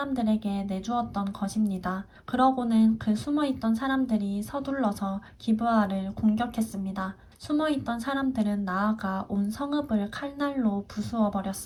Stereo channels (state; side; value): identical; both; correlation 1.00